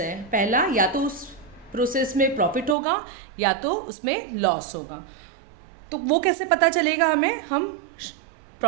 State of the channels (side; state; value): left; drops out; at 2.8 s